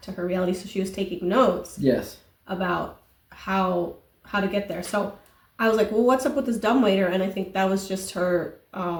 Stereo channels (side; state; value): both; identical; correlation 1.00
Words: to her reality. So she was taking notes. Yes. About how to get there. So I was like, well, what's up with this dumbwaiter? And I think that was just her